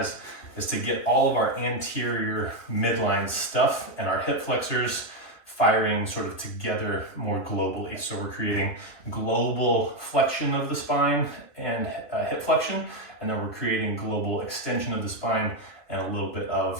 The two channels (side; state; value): right; late; 3.0 ms